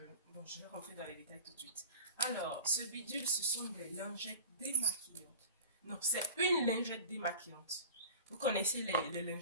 Bon, je vais rentrer dans les détails tout de suite. Alors, ce bidule, ce sont des lingettes démaquillantes. Non, c'est une lingette démaquillante. Vous connaissez les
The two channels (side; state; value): both; inverted; correlation -0.38